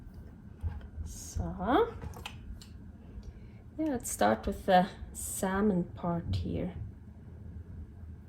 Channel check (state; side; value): identical; both; correlation 1.00